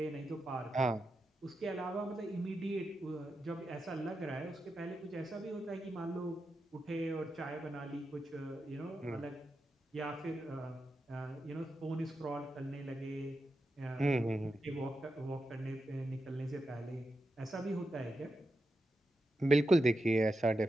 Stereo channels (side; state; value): both; normal; correlation 0.88